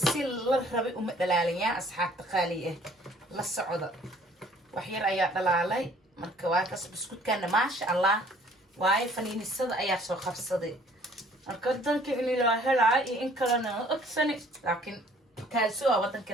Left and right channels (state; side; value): normal; both; correlation 0.57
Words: si la rabay uma dhalaaliyaan asxaabta qaaliye la socda wax yar ayaa dhalaalay marka waa kaas buskudkana ma sha Allah واي فنين الصد أيا سو خفصدي أقدر كإني لا هلا إن كلنا أكسني لكن كالسوا وطن